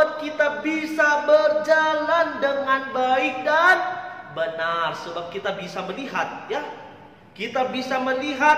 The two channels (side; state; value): both; identical; correlation 1.00